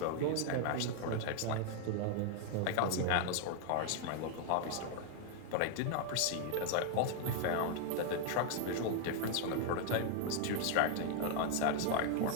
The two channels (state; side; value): different; both; correlation 0.00